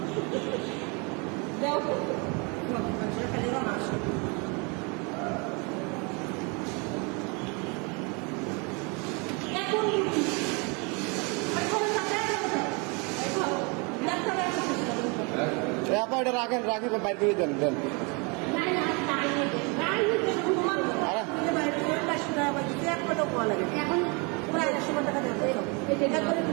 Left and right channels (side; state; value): left; quieter; 31.4 dB